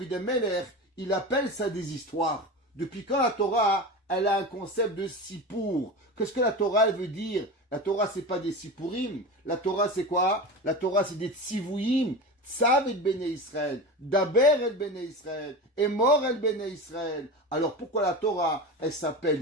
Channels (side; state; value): both; normal; correlation 0.27